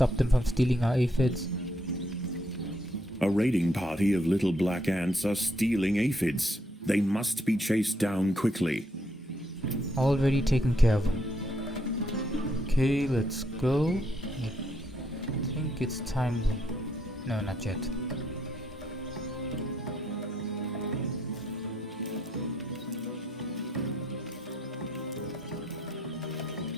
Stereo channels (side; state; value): both; normal; correlation 0.73